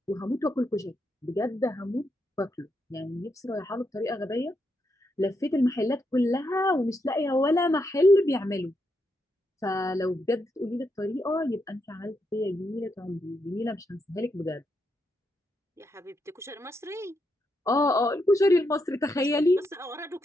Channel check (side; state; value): both; normal; correlation 0.81